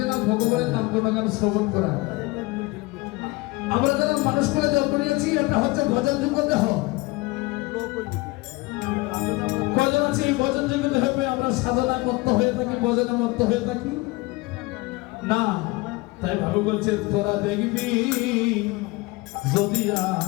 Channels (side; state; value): right; quieter; 22.9 dB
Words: না ভগবানের নাম গুণগান শ্রবণ করা। আমরা যারা মানুষ করে জন্ম নিয়েছি এটা হচ্ছে ভজন যোগ্য দেহ। কজন আছে ভজন যোগ্য দেহ পেয়ে আমরা সাধনায় মত্ত হয়ে থাকি, ভজনে মত্ত হয়ে থাকি না। তাই ভাবে বলছে তোরা দেখবি যদি